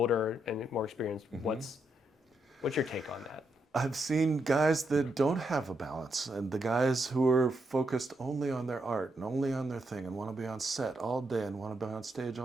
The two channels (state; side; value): normal; both; correlation 0.80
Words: and more experienced, what's your take on that? I've seen guys that don't have a balance, and the guys who are focused only on their art and only on their thing and want to be on set all day and want to be on stage